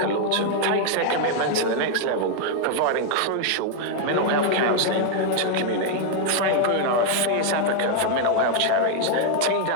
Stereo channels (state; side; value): different; both; correlation 0.00